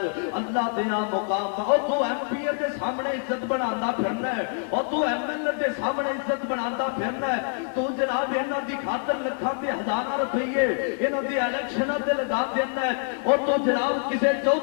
اللہ دے ہاں مقام بن اور تو ایم پی دے سامنے عزت بنانا پھرنا ہے اور تو ایم ایل اے دے سامنے عزت بنانا پھرنا ہے تو جناب انہاں دی خاطر لکھاں تے ہزاراں روپیے انہاں دی الیکشناں تے لگا دینا ہے اور تو جناب کسے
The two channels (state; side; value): silent; right; 61 dB below the other